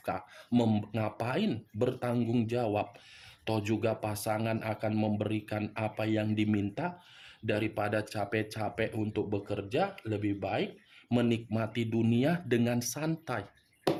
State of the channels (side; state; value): both; identical; correlation 1.00